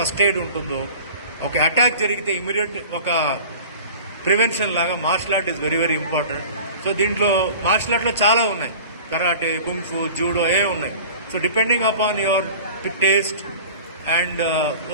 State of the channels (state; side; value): inverted; both; correlation -0.41